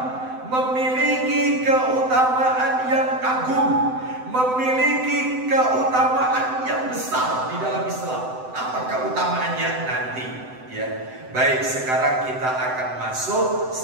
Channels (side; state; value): left; late; 7.9 ms